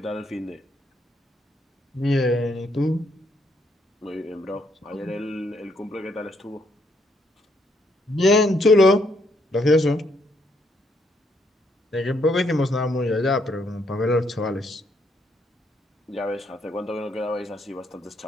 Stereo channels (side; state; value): both; normal; correlation 0.73